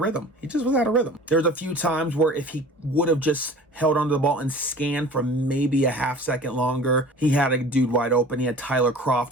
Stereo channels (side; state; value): both; normal; correlation 0.43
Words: rhythm. He just was out of rhythm. There's a few times where if he would have just held onto the ball and scanned for maybe a half second longer, he had a dude wide open. He had Tyler